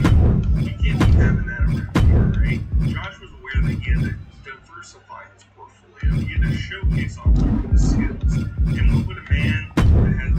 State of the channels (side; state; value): both; identical; correlation 1.00